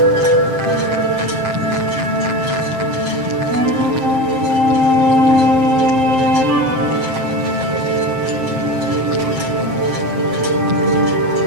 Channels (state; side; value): late; left; 7.6 ms